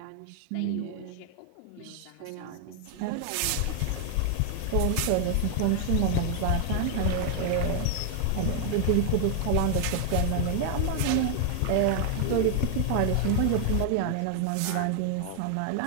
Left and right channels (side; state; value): both; different; correlation 0.00